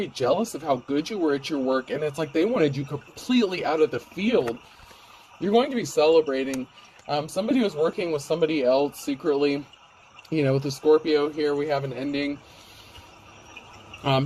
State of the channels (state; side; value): identical; both; correlation 1.00